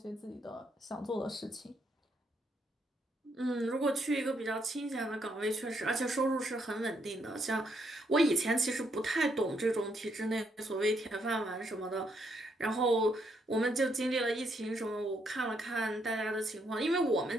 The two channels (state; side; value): normal; both; correlation 0.75